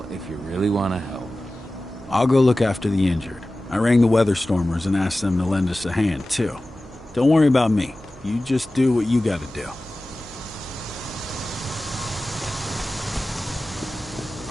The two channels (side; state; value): right; noise; hum, 22 dB below the sound